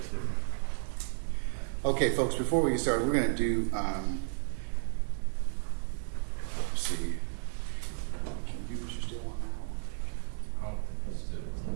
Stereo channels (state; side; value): silent; left; 56 dB below the other